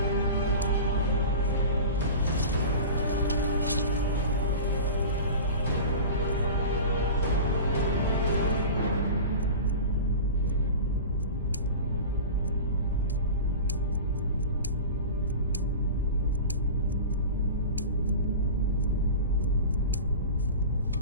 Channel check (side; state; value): both; inverted; correlation -0.33